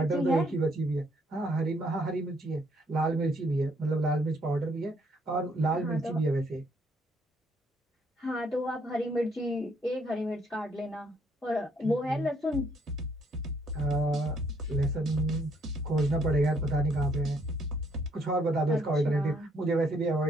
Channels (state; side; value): normal; both; correlation 0.68